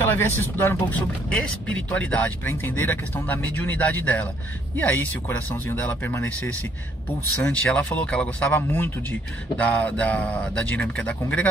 ela viesse estudar um pouco sobre espiritualidade, para entender a questão da mediunidade dela. E aí, se o coraçãozinho dela permanecesse pulsante, ela falou que ela gostava muito da dinâmica da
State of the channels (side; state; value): both; normal; correlation 0.67